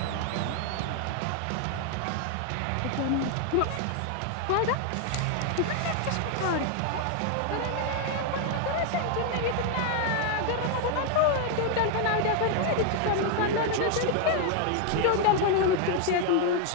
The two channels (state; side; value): different; both; correlation 0.00